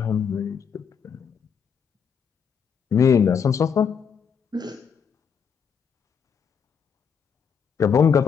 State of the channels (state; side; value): quieter; right; 6.8 dB